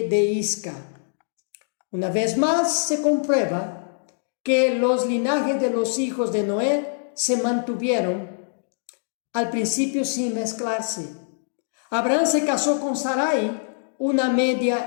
de Isca. Una vez más se comprueba que los linajes de los hijos de Noé se mantuvieron al principio sin mezclarse. Abraham se casó con Sarai, una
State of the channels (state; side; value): silent; right; digital silence